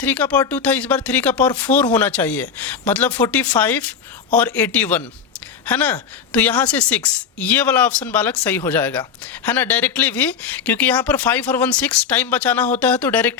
का पावर 2 था, इस बार 3 का पावर 4 होना चाहिए, मतलब 45 और 81 है ना। तो यहाँ से 6, ये वाला ऑप्शन बालक सही हो जाएगा, है ना, डायरेक्टली भी, क्योंकि यहाँ पर 5 और 1 6 टाइम बचाना होता है, तो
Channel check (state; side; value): quieter; right; 6.7 dB